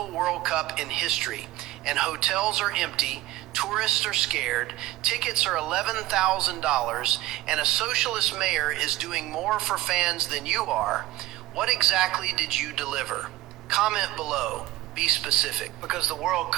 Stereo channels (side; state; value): left; quieter; 16.8 dB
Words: World Cup in history, and hotels are empty, tourists are scared, tickets are $11,000, and a socialist mayor is doing more for fans than you are, what exactly did you deliver? Comment below. Be specific, because the World